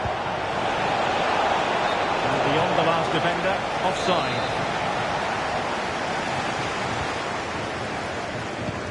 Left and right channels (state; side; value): identical; both; correlation 1.00